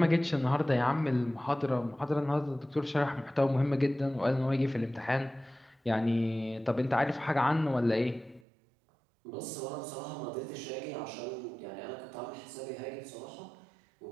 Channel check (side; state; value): left; drops out; at 8.5 s